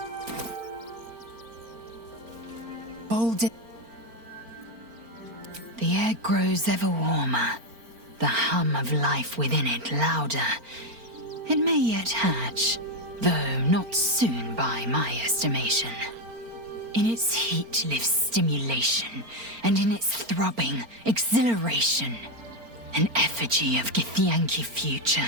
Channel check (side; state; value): left; late; 4.4 ms